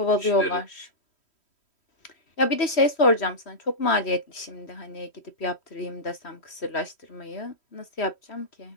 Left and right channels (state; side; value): late; right; 3.1 ms